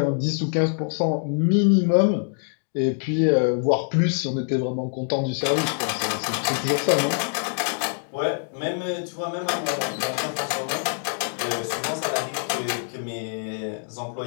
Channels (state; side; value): silent; right; digital silence